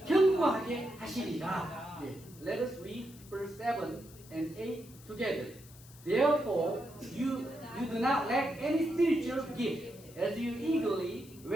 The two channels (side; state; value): left; noise; hiss, 21 dB below the sound